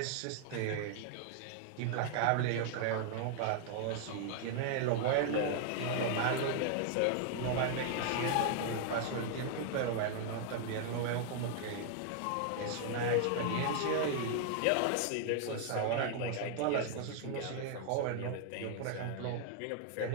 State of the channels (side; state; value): both; different; correlation 0.00